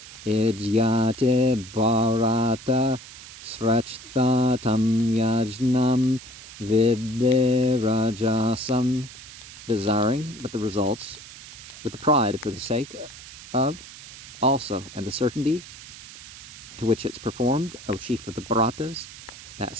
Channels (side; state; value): right; noise; hiss, 16 dB below the sound